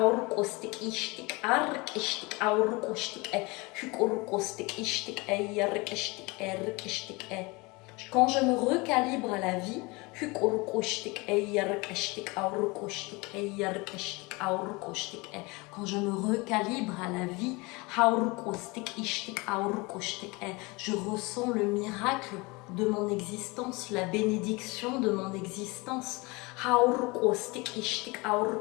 Quand je me recalibre à la vie, quand je me recalibre à la vie, je ressens le miracle de mon existence, la bénédiction de mon existence.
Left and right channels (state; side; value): quieter; right; 25.4 dB